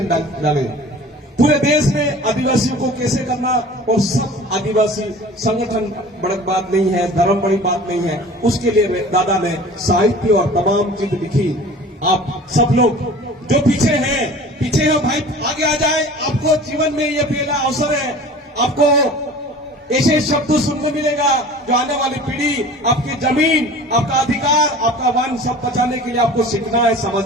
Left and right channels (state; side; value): normal; both; correlation 0.42